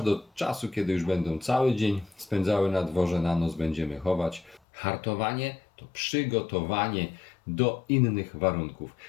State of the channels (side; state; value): right; drops out; at 4.6 s